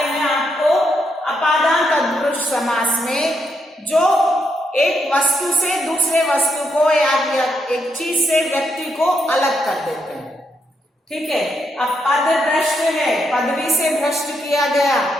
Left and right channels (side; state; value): both; normal; correlation 0.79